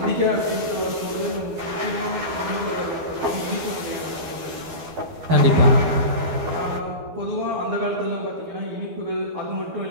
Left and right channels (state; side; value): late; left; 12 ms